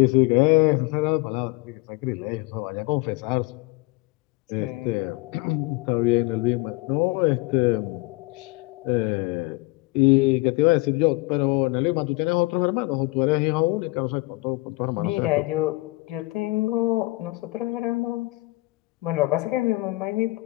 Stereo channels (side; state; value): right; quieter; 22.3 dB